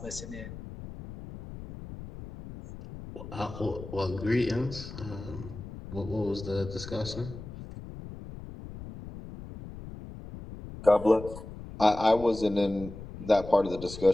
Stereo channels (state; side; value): noise; left; rumble, 12 dB below the sound